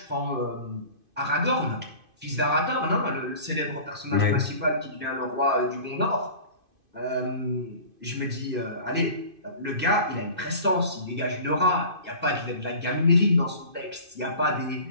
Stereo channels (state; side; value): late; left; 2.5 ms